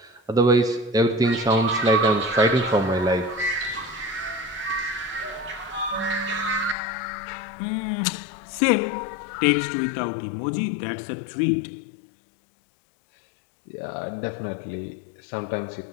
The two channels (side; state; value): right; drops out; at 6.8 s